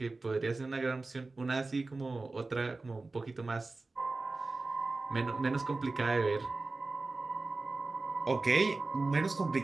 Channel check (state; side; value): quieter; left; 3.4 dB